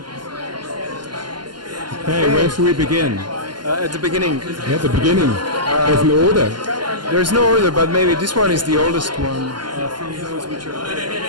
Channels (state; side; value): late; left; 0.71 ms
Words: Hey, where should we begin? At the beginning, Yeah, the beginning. There's an order. there's no order, but maybe this one is the oldest one. From those which are